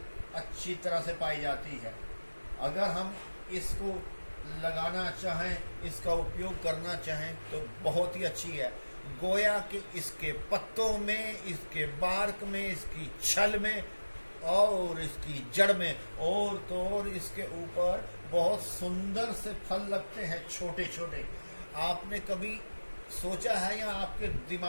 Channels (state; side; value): inverted; both; correlation -1.00